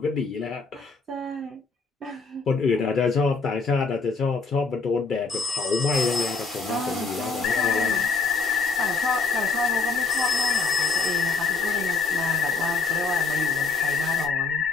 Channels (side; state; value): right; quieter; 4.4 dB